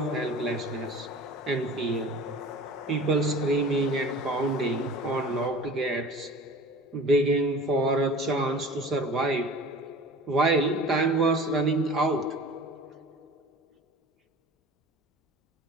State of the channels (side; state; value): both; normal; correlation 0.41